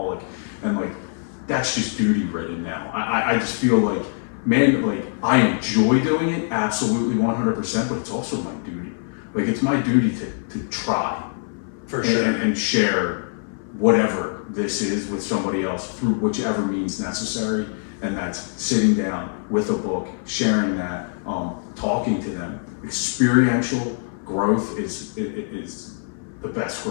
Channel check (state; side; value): silent; right; 58 dB below the other